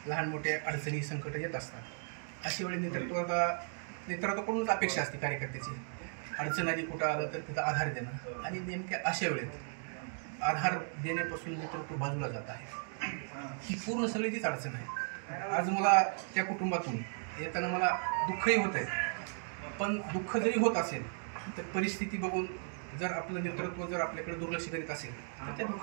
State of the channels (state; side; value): silent; left; 54 dB below the other